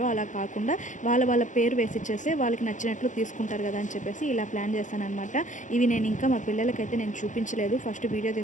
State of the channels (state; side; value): late; right; 0.36 ms